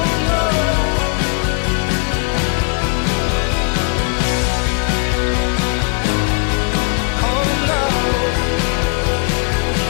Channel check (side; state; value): right; quieter; 37.1 dB